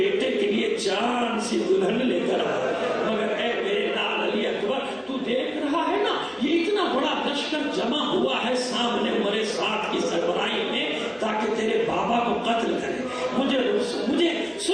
کے لیے چاند سی دلہن لے کر آئے. مگر اے میرے لال علی اکبر، تو دیکھ رہا ہے نا یہ اتنا بڑا لشکر جمع ہوا ہے سامنے عمر سعد کی سربراہی میں تاکہ تیرے بابا کو قتل کرے. مجھے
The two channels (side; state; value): both; identical; correlation 1.00